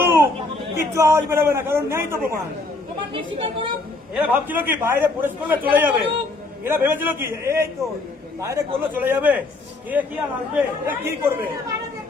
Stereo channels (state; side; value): quieter; right; 3.2 dB